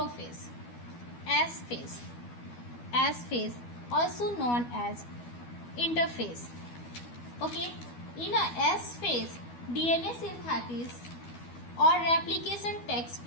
S phase also known as interphase. Okay, in a S phase, DNA synthesis or replication takes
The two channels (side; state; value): right; late; 12 ms